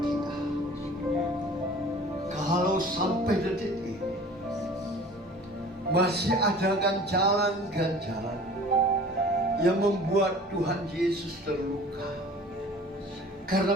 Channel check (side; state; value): both; normal; correlation 0.45